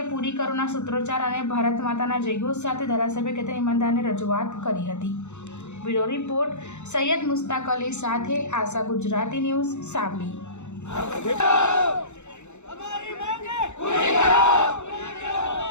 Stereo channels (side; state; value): right; late; 0.83 ms